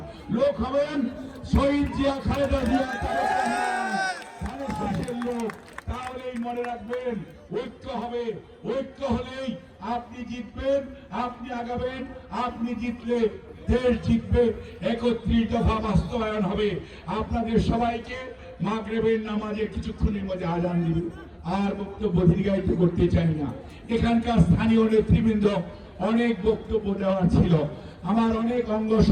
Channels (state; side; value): identical; both; correlation 1.00